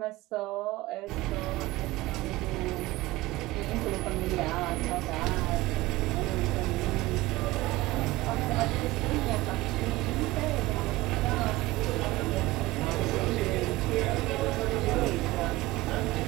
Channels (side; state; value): left; quieter; 18.8 dB